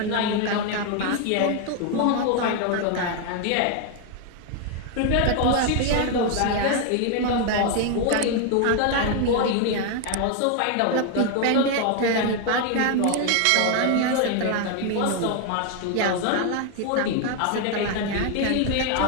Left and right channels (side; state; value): both; different; correlation 0.01